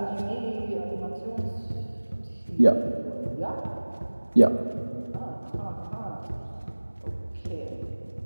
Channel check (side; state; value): both; inverted; correlation -1.00